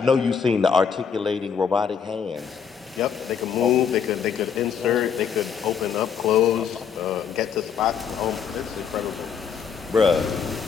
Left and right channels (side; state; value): right; quieter; 6.9 dB